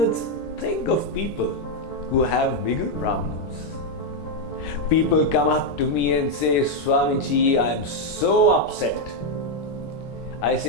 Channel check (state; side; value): late; right; 13 ms